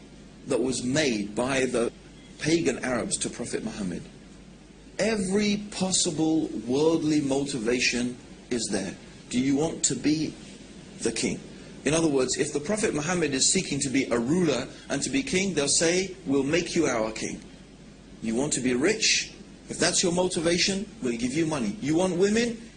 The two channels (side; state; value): both; identical; correlation 1.00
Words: that was made by the pagan Arabs to Prophet Muhammad, every possible worldly motivation is there. Do you want to be the king? In other words, if the Prophet Muhammad is seeking to be a ruler and to be king, they'll say, we'll make you our king. You want to be rich? If that's your motivation, we'll give you money. You want women?